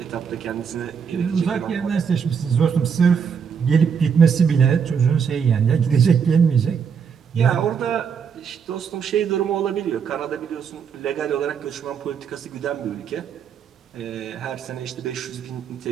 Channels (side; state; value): left; quieter; 6.8 dB